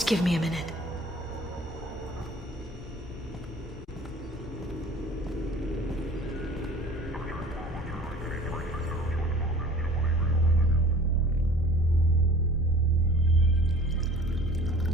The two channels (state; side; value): normal; both; correlation 0.47